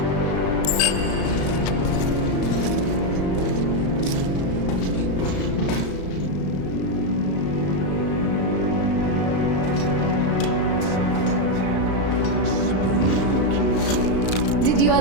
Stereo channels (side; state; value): right; late; 35 ms